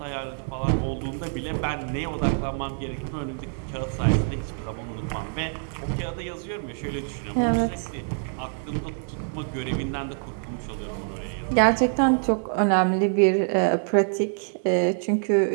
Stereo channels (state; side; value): silent; left; 55 dB below the other